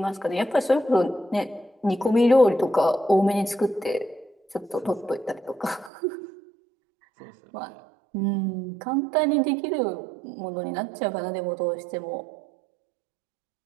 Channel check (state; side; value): drops out; left; at 5.9 s